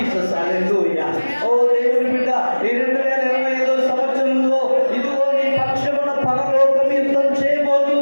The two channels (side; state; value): both; inverted; correlation -1.00